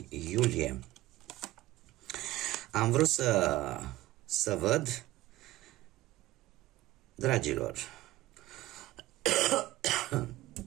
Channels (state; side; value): quieter; left; 16.7 dB